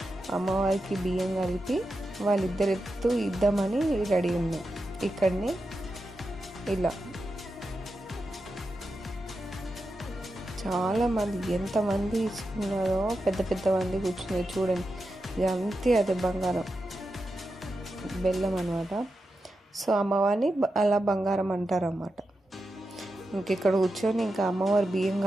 అమ్మవారికి బియ్యం కలిపి వాళ్ళిద్దరు ఇద్దామని రెడీ ఉన్నాం. ఇక్కడనే ఇలా చాలామంది ఎంతమంది ఇచ్చుకున్నారో, పెద్ద పెద్ద మంది కూర్చున్నారు చూడండి. ఇది అంతే, అదే బంగారం బెల్లం అనమాట. సో అమ్మవారిని అలా బంగారం అంటారు అన్నమాట. ఇక్కడ కూర్చొని ఇంకా అమ్మవారి బియ్యం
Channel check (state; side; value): normal; both; correlation 0.89